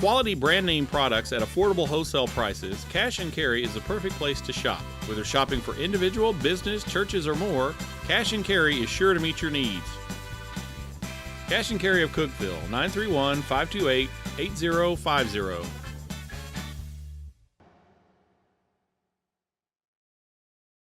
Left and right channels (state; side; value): identical; both; correlation 1.00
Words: brand name products at affordable wholesale prices, Cash and Carry is the perfect place to shop. Whether shopping for individual, business, churches, or more, Cash and Carry is sure to meet your needs. Cash and Carry of Cookeville, 931-528-8050.